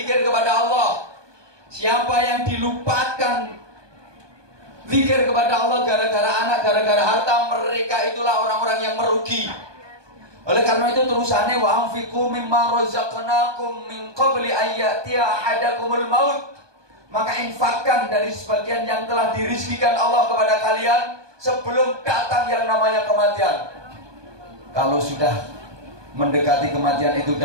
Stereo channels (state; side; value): late; left; 1.2 ms